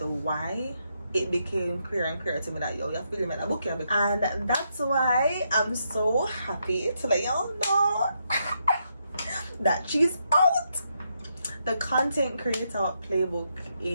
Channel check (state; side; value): inverted; both; correlation -0.79